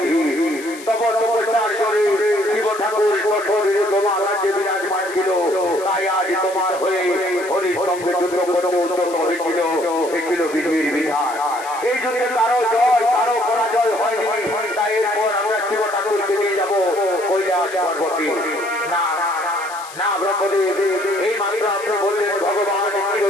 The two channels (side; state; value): left; noise; hiss, 16 dB below the sound